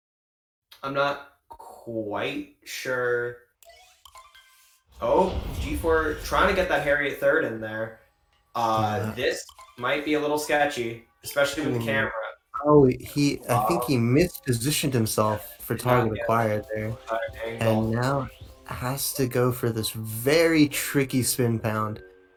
I'm not quite sure. Oh, G4 trying to get that Harriet third in there. This might be a little sketchy, especially with the camera. Oh, I think he mispositioned himself for target acquired there. And now has to go for this very tricky spin pound.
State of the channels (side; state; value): both; identical; correlation 1.00